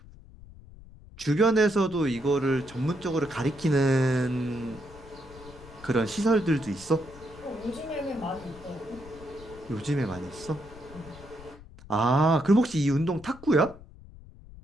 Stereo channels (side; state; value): left; noise; rumble, 19 dB below the sound